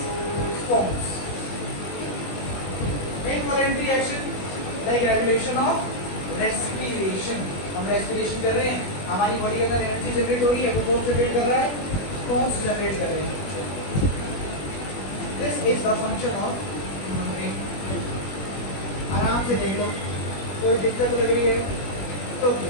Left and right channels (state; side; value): late; right; 21 ms